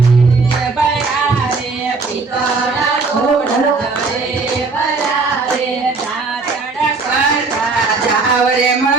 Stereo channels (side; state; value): left; quieter; 4.1 dB